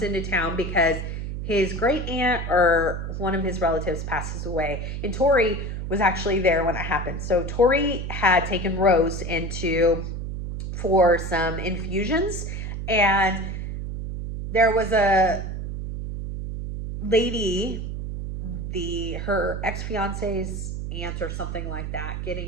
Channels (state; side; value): noise; right; hum, 5 dB below the sound